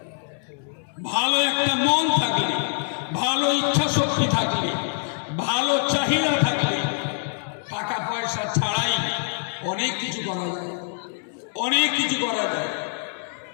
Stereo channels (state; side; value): silent; right; digital silence